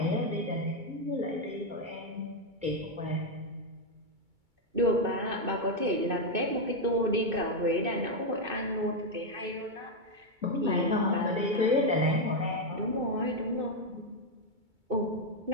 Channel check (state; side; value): late; left; 2.2 ms